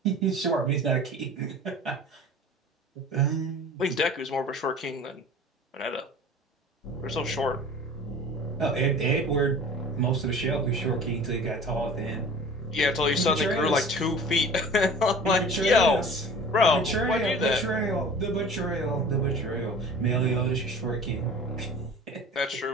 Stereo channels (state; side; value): normal; both; correlation 0.41